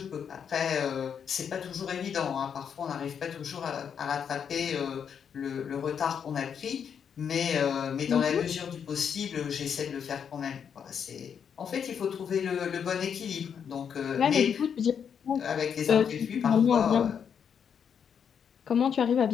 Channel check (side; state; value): right; quieter; 7.5 dB